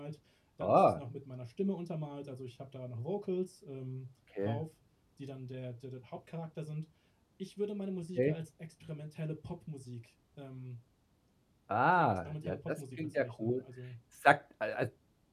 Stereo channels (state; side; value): identical; both; correlation 1.00